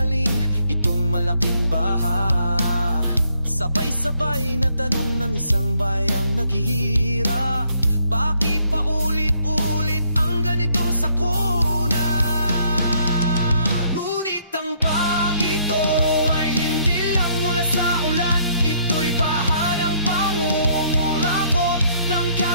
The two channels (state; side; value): inverted; both; correlation -0.68